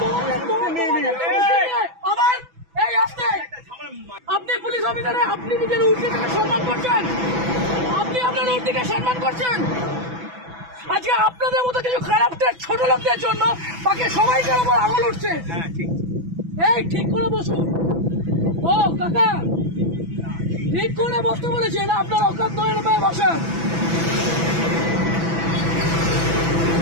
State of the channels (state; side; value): late; left; 6.0 ms